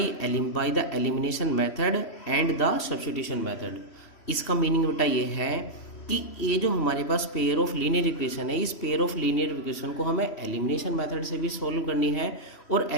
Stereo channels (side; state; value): right; late; 3.1 ms